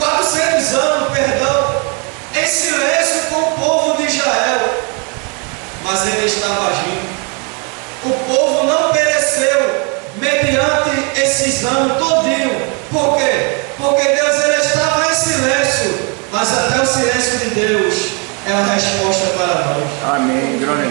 anos, perdão, em silêncio com o povo de Israel, mas ele estava agindo. O povo não pereceu mediante esses anos todinho. Por quê? Porque Deus ele estava em silêncio, mas até o silêncio de Deus é a resposta para nós. Amém, glória a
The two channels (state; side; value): quieter; left; 34.6 dB